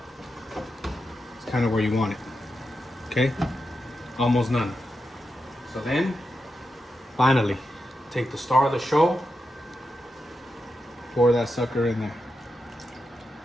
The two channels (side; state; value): both; normal; correlation 0.88